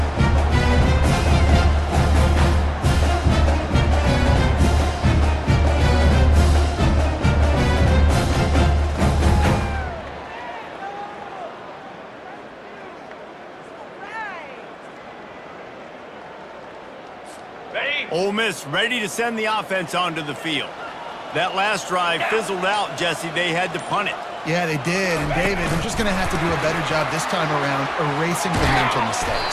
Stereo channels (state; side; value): identical; both; correlation 1.00